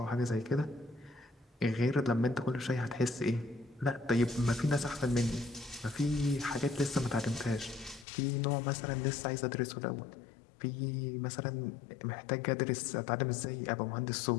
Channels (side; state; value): right; drops out; at 8.1 s